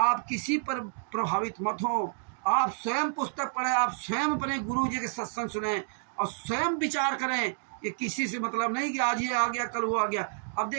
किसी पर प्रभावित मत हो, आप स्वयं पुस्तक पढ़ें, आप स्वयं अपने गुरु जी के सत्संग सुने और स्वयं विचार करें। ये किसी से मतलब नहीं कि आज ये आ गया कल वो आ गया। अब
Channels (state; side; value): silent; left; digital silence